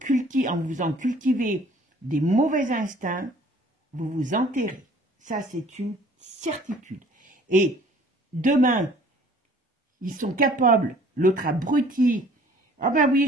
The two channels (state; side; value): normal; both; correlation 0.54